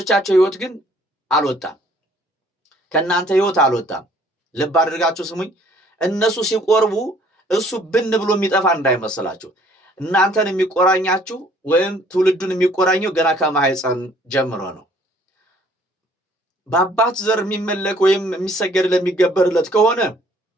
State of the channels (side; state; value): both; normal; correlation 0.59